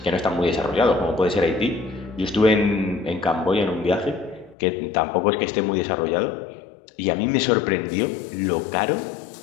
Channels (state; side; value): drops out; right; at 4.5 s